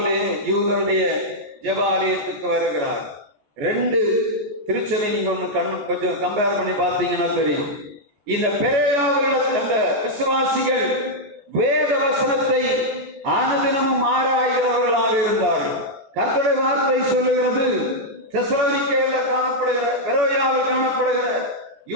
யூதருடைய ஜெபாலயத்துக்கு வருகிறார். ரெண்டு திருச்சபை நீங்க ஒண்ணு கொஞ்சம் கம்பேர் பண்ணி பார்த்தீங்கன்னா தெரியும். இந்த பெரோயாவில் அந்த விசுவாசிகள் வேத வசனத்தை அனுதினமும் ஆராய்கிறவர்களாக இருந்தார்கள். கர்த்தருடைய வார்த்தை சொல்லுகிறது, தெசலோனிக்கேயில் காணப்படுகிற பெரோயாவில் காணப்படுகிற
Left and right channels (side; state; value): left; late; 14 ms